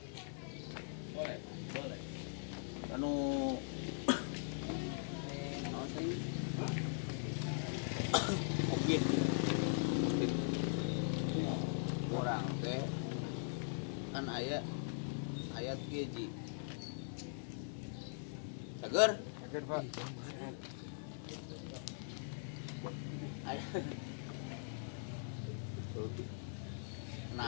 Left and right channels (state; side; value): silent; right; digital silence